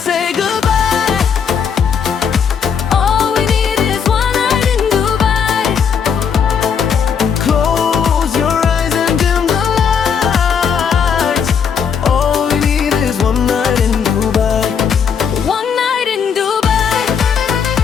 say goodbye. All we need is one night in Dubai. Close your eyes and dim the lights. All we need is one night in Dubai. One night in Dubai.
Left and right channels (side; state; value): right; quieter; 6.9 dB